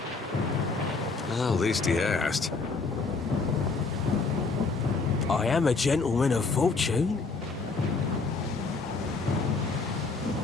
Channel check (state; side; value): quieter; right; 4.1 dB